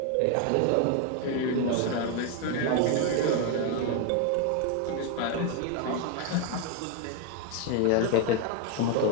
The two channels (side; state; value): both; different; correlation 0.01